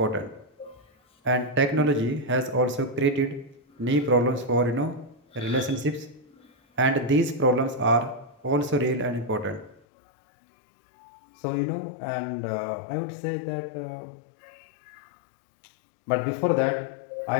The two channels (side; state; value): right; drops out; at 9.8 s